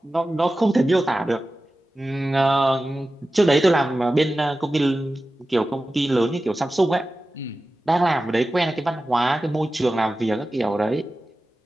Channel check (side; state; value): both; normal; correlation 0.95